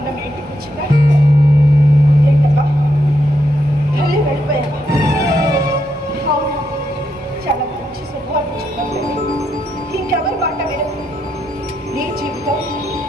మీ ఇంటికి వచ్చిందా? ఏంటమ్మా మళ్ళీ వెళ్ళిపోయావా? అవును, చాలా మంచి శుభవార్త చెప్పండి. ఇంకెవరి మాట వినకు. నీ జీవితం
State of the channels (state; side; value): normal; both; correlation 0.80